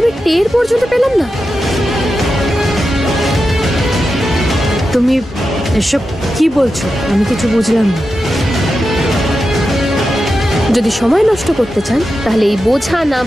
টের পর্যন্ত পেলাম না। তুমি এসব কি বলছো? আমি কিছু বুঝলাম না। যদি সময় নষ্ট করতে চান তাহলে এই বোঝা না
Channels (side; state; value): both; normal; correlation 0.90